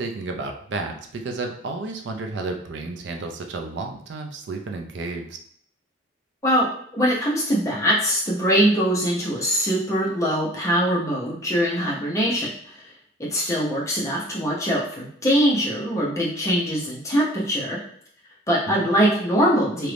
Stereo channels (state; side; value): normal; both; correlation 0.47